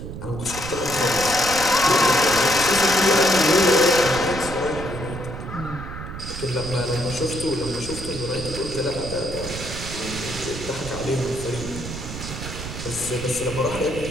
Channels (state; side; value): noise; right; rumble, 9 dB below the sound